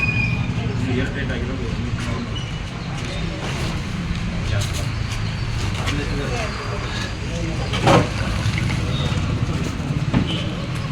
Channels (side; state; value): both; identical; correlation 1.00